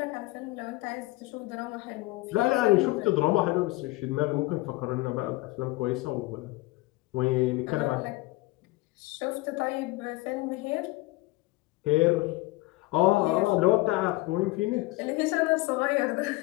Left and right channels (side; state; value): right; quieter; 20.8 dB